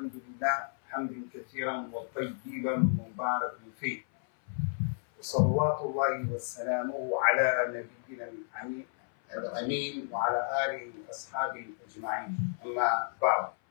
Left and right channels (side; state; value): right; silent; 56 dB below the other